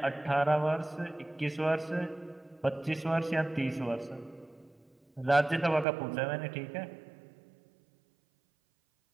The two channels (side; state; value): left; drops out; at 5.9 s